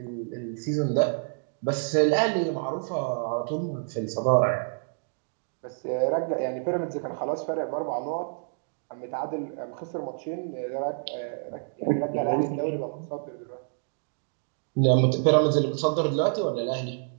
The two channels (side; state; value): left; silent; digital silence